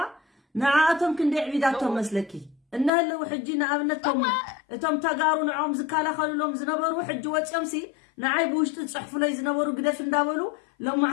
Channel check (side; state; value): right; drops out; at 2.9 s